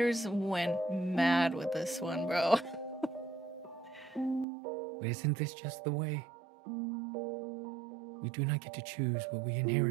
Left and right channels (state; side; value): drops out; left; at 4.5 s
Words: went mad with this one, bro. But isn't this just the way? We do not get to choose what we